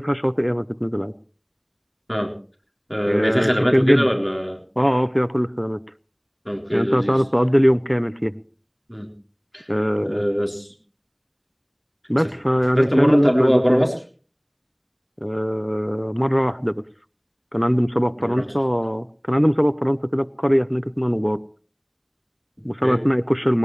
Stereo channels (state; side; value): identical; both; correlation 1.00